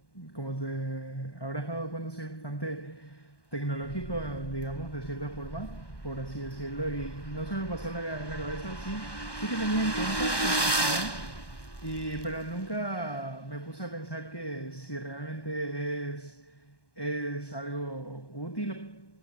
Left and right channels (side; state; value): right; late; 1.2 ms